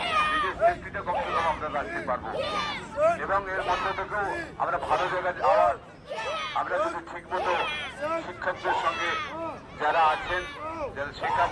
নিজের সেফটিটা কমসে কম আমরা রাখতে পারবো। এবং এর মধ্যে থেকেও আমরা ভালো জায়গায় যাওয়ার, আমরা যদি ঠিক মতো শিক্ষকদের সঙ্গে যারা আছেন, যারা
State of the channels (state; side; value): identical; both; correlation 1.00